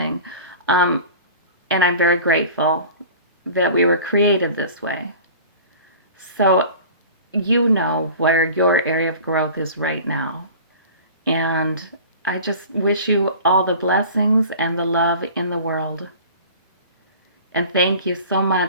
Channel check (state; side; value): inverted; both; correlation -0.41